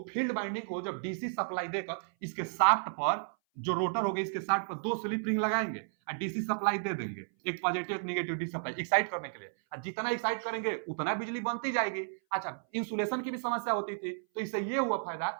फील्ड बाइंडिंग को जब डीसी सप्लाई देकर इसके शाफ्ट पर, जो रोटर हो गया इसके शाफ्ट पर दो स्लिप रिंग लगाएंगे और डीसी सप्लाई दे देंगे, एक पॉजिटिव एक नेगेटिव डीसी सप्लाई एक्साइट करने के लिए, और जितना एक्साइट करेंगे उतना बिजली बनती जाएगी। अच्छा, इंसुलेशन की भी समस्या होती थी, तो इससे ये हुआ फायदा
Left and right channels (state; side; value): silent; left; 56 dB below the other